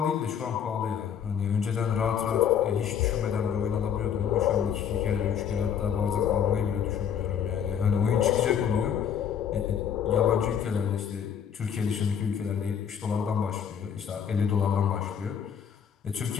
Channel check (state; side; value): quieter; right; 8.1 dB